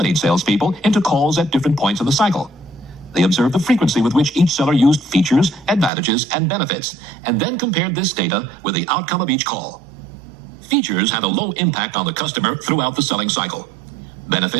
salespeople into calls at different points in the cycle. They observed the frequency with which each seller used features, advantages, and benefits, and then compared this data with the outcome of each call. Features had a low impact on the customer throughout the selling cycle.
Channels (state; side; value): drops out; left; at 5.9 s